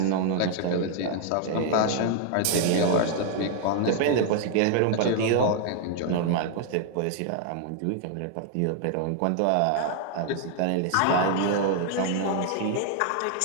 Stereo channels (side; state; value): both; different; correlation 0.00